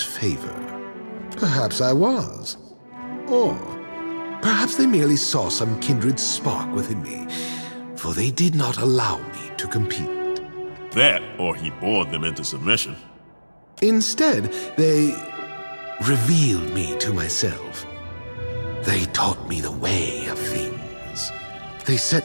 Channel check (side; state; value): both; inverted; correlation -1.00